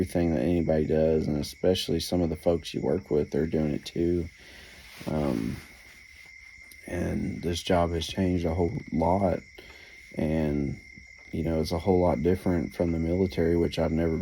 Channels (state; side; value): identical; both; correlation 1.00